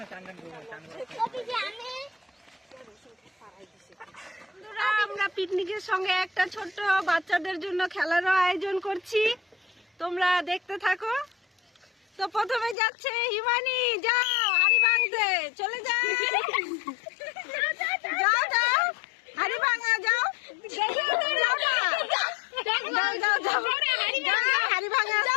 আমরা পিকনিকের সঙ্গে একটা ছোট্ট বাচ্চাদের জন্য খেলারও আয়োজন করছি, তোমরা দেখতে থাকো। তো প্রথমে যাচ্ছে হিমানি, যাও হাড়ি ভাঙতে, চলে যাও যাও যাও, হাড়ি ভাঙা যাও, যাও যাও যাও যাও, হাড়ি ভাঙা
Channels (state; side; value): drops out; right; at 12.8 s